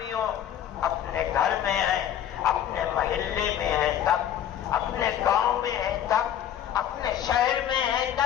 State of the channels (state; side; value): quieter; right; 10.4 dB